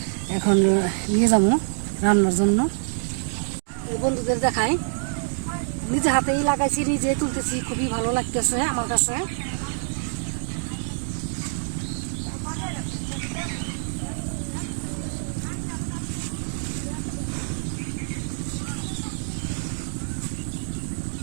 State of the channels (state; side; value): silent; left; digital silence